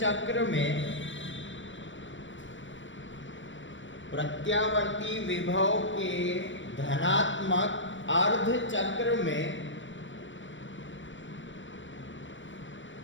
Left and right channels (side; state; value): right; late; 0.55 ms